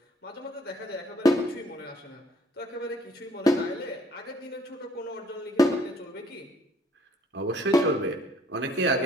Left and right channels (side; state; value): both; normal; correlation 0.61